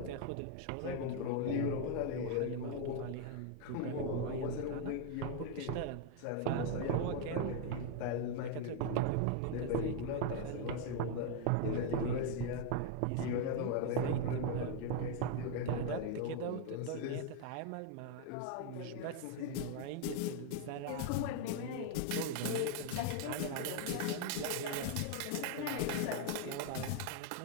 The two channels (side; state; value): both; different; correlation 0.01